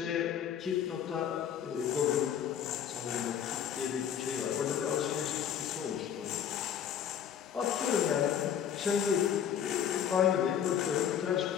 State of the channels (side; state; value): right; quieter; 9.0 dB